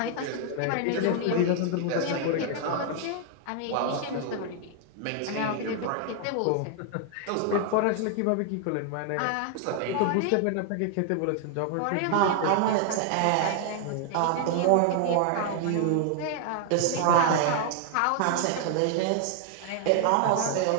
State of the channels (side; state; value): both; different; correlation 0.00